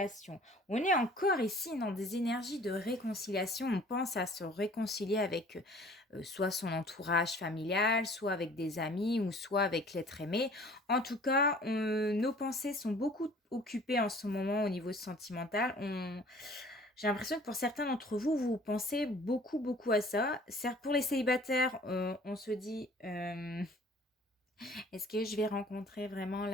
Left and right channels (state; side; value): normal; both; correlation 0.51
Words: On est encore ici dans des énergies de réconciliation. On pense à se réconcilier avec, soit son entourage familial, soit avec des amis ou soit avec l'être aimé. En tout cas, nos pensées sont beaucoup occupées en ce moment au niveau sentimental. J'ai l'impression que pour certains d'entre vous, vous pensez beaucoup, beaucoup à ça. Certes, pour les célibataires, on se dit, est-ce que je vais rencontrer vraiment